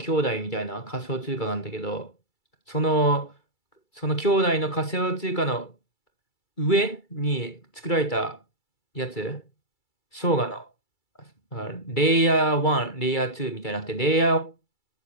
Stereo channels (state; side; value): late; right; 2.3 ms